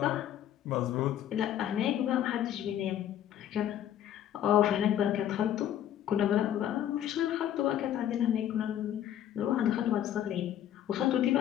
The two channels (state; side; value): quieter; right; 11.0 dB